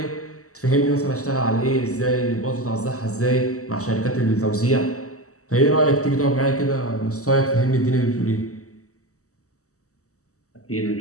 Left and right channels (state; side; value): late; right; 0.65 ms